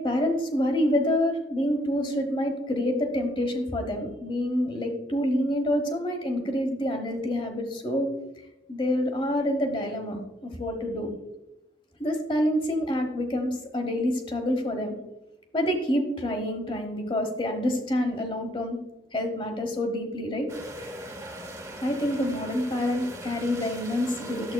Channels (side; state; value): both; normal; correlation 0.68